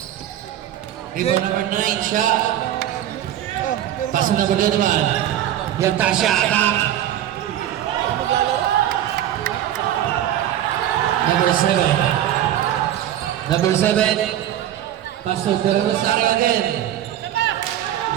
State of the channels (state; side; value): quieter; left; 11.8 dB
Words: Rebound number 9, shot. Pass to number 2 naman. Yung Tasha attack. Number 7. Number 7, pass to De Rosario again.